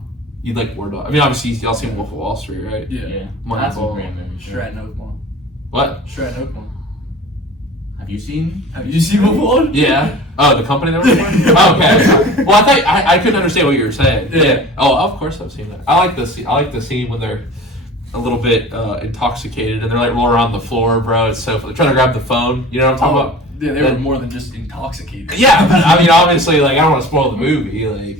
You'd like War Dogs. I mean, obviously y'all seen Wolf of Wall Street, right? Yeah. Yeah. Moneyball. That's a great movie. Stratton Oakmont. What? Stratton Oakmont. Have you seen? Have you seen Wolf? Yeah. Oh, the company that we're oh, okay. Well, I thought I couldn't understand what you were saying. Yeah. Oh, of course I've seen that. I like the scene. I like the scene when they're a little bit intoxicated and they're like rolling around the floor, bro. It's so they're trying to grab the phone. You know what I'm talking about? Yeah, they were more than just intoxicated. Yeah, but I mean, obviously, like I don't want to spoil the movie.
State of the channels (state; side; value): normal; both; correlation 0.40